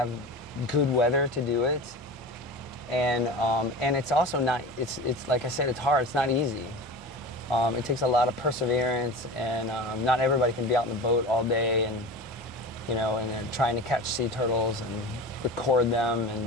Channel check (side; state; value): both; normal; correlation 0.32